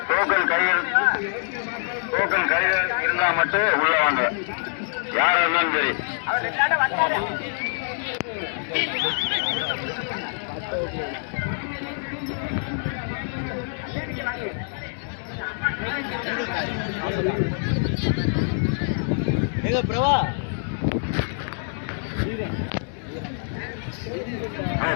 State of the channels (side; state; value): right; silent; digital silence